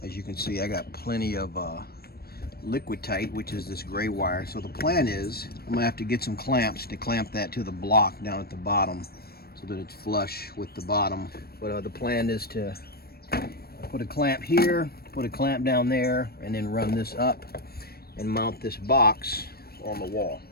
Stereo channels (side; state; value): right; late; 0.45 ms